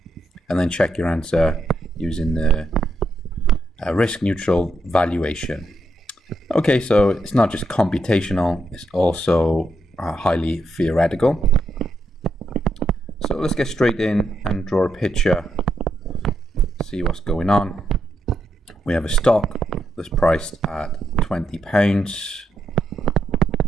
and then check your answer using the risk neutral valuation. Okay, so it's not just computational, it's also highly theoretical. So let's get straight in and draw a picture, see what's going on. We have a stock that's priced at £20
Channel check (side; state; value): both; normal; correlation 0.80